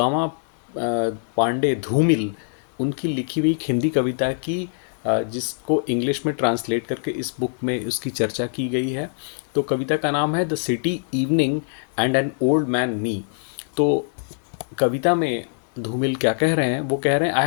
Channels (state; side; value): silent; right; digital silence